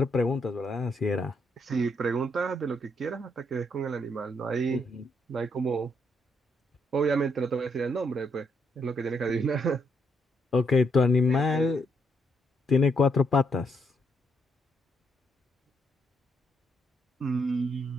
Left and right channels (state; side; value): normal; both; correlation 0.75